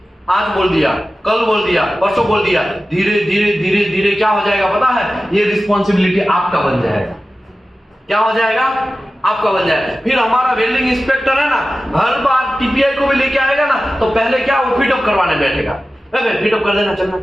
आज बोल दिया, कल बोल दिया, परसों बोल दिया, धीरे धीरे क्या हो जाएगा पता है? ये रिस्पॉन्सिबिलिटी आपका बन जाएगा। क्या हो जाएगा? आपका बन जाएगा। फिर हमारा वेल्डिंग इंस्पेक्टर है ना, हर बार TPI को भी लेके आएगा ना, तो पहले क्या वो फिटअप करवाने बैठेगा। फिटअप कर देना, चलना।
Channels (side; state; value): both; normal; correlation 0.95